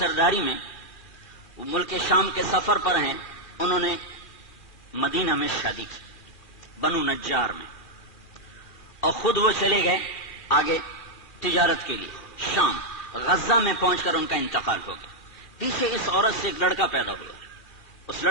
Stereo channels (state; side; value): late; right; 2.4 ms